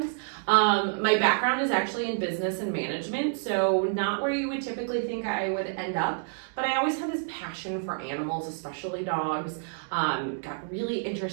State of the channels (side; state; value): left; silent; digital silence